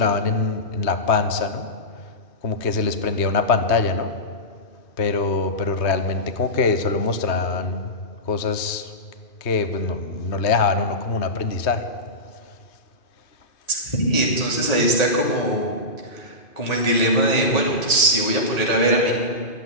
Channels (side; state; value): right; late; 2.5 ms